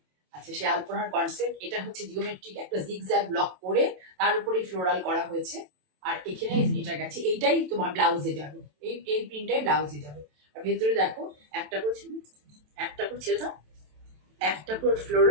আচ্ছা, সেই আলপনার কনসেপ্ট এটা হচ্ছে জিওমেট্রিক একটা জিগজ্যাগ ব্লক করে তার উপরেই ফ্লোরাল করা হয়েছে। আর এখানে এটা গেছে, এইটাই তোমার ব্লাউজে যাবে, এই প্রিন্টটাই ব্লাউজে যাবে। আর ভেতরে দেখো একটা করে ছেড়ে দাও, একটা করে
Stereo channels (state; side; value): late; left; 27 ms